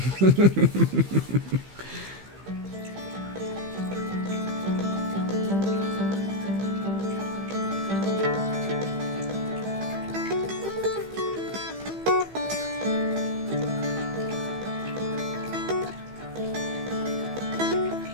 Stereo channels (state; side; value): late; left; 15 ms